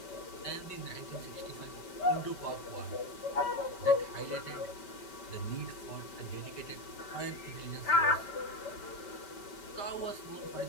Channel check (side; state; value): right; late; 5.2 ms